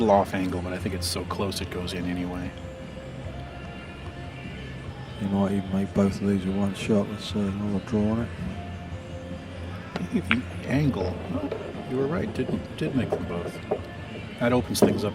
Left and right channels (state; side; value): identical; both; correlation 1.00